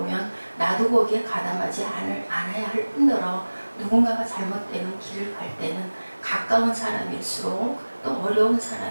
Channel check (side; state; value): both; inverted; correlation -1.00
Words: 나도 거기에 가담하지 않아야 할 뿐더러 누군가가 잘못되는 길을 갈 때는 가까운 사람일수록 또 어려운